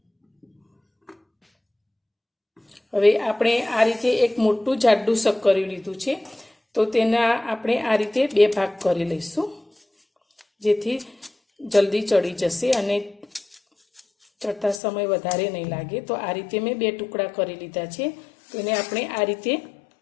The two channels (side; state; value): right; drops out; at 14.8 s